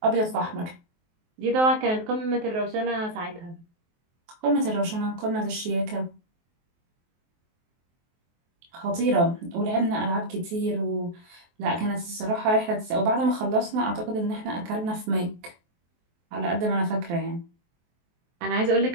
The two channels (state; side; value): late; left; 23 ms